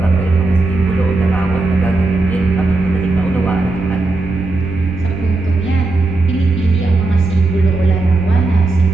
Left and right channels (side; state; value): left; quieter; 3.2 dB